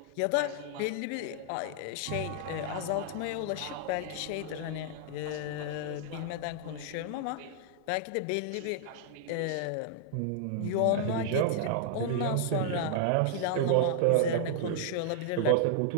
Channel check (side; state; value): both; different; correlation -0.01